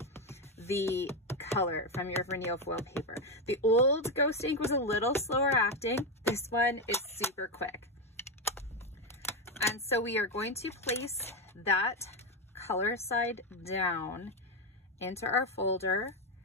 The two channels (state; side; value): normal; both; correlation 0.09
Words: the color from your Rinea foil paper. The old Ghost Ink was a little slower acting. This one is super quick. And so we are going to place that color side down into our folder.